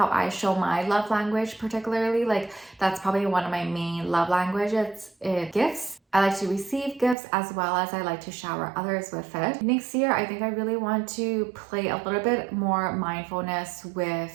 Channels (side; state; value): left; drops out; at 7.2 s